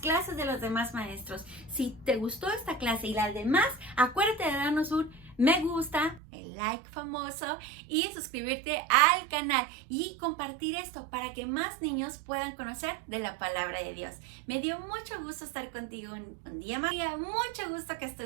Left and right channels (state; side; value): drops out; left; at 6.2 s